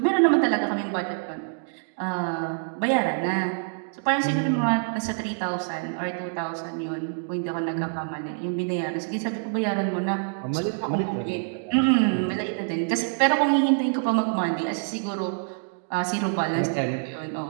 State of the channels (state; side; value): silent; left; digital silence